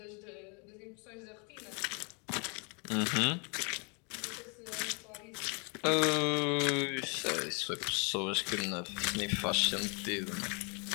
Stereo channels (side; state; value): right; quieter; 34.2 dB